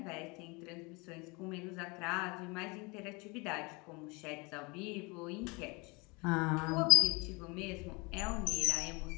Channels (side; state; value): right; quieter; 27.7 dB